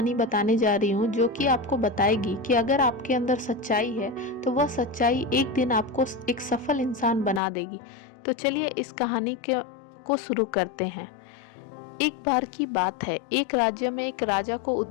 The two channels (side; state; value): right; drops out; at 7.4 s